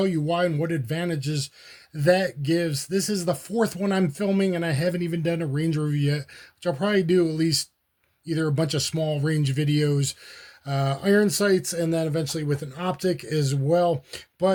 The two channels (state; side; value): identical; both; correlation 1.00